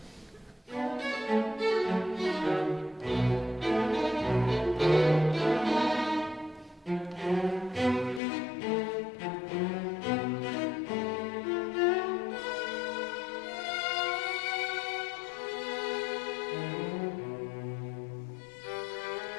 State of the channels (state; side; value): drops out; right; at 8.2 s